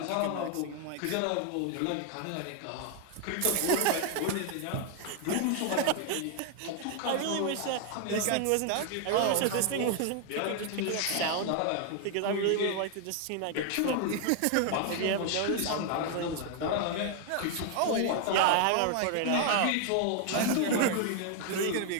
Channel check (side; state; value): both; different; correlation 0.00